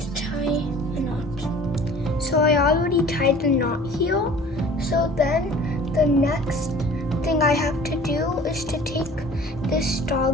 tie a knot. So I already tied the knot here. So then the next thing I have to do is to take this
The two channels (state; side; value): normal; both; correlation 0.47